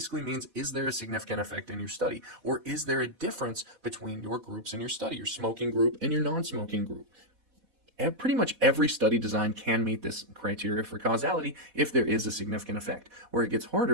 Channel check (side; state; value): left; late; 4.1 ms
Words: means, is there a significant effect in your study, or is there a difference between your groups in your study, your smoking group and your non-smoking group? Pretty much every study design can meet this criteria for causality if there is a significant effect. Where it gets